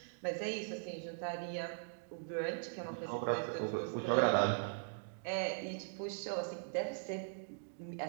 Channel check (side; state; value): left; silent; digital silence